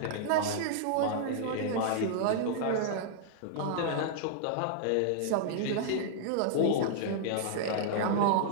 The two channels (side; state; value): both; different; correlation -0.01